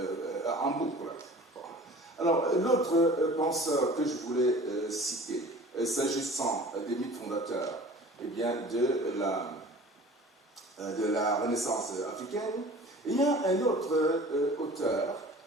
en boucle. Bon. Alors, l'autre penseur que je voulais citer, s'agissant des mythes fondateurs, eh bien, de la Renaissance africaine, il y a un autre auteur,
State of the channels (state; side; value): normal; both; correlation 0.44